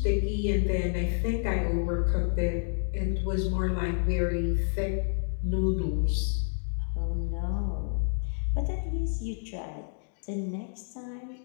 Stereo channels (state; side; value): silent; right; digital silence